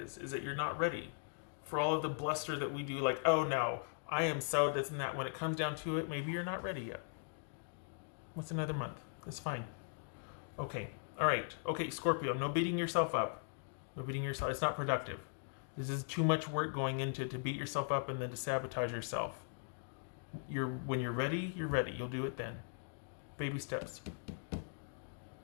that you're not ready. For all of the bluster that we do, like, oh no, I am so this and that. When it comes down to it, maybe you're not ready yet. What's another month? That's fine. Okay. All right. Okay, Scorpio, no beating yourself up. No beating yourself. It's not productive. This is too much work going into to beat yourself up and then to sabotage yourself. When you're ready, you're ready. You'll do it then. Baby steps.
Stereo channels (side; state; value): right; silent; digital silence